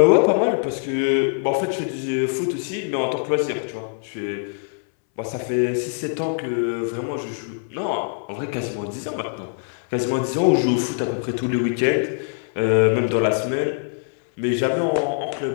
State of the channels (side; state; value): right; silent; 64 dB below the other